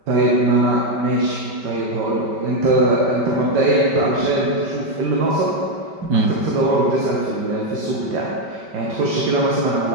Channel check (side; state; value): left; late; 5.2 ms